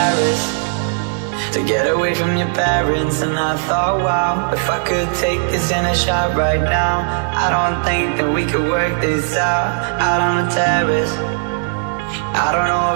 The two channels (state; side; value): silent; left; 60 dB below the other